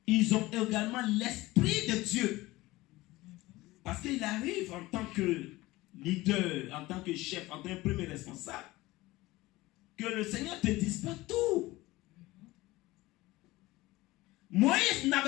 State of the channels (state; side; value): quieter; right; 19.2 dB